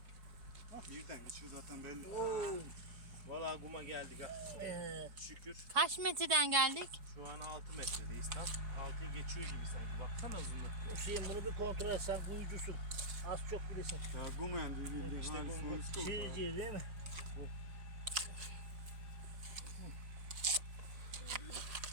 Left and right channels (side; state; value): left; late; 4.7 ms